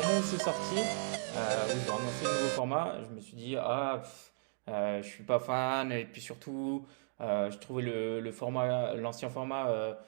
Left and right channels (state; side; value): silent; left; digital silence